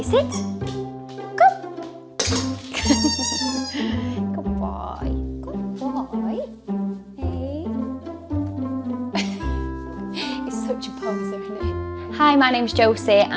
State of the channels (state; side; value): identical; both; correlation 1.00